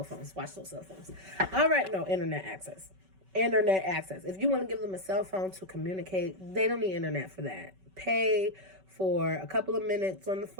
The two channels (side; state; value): left; late; 5.3 ms